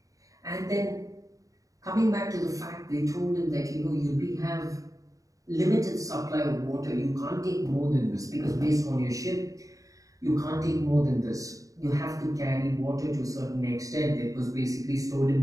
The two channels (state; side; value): late; left; 0.16 ms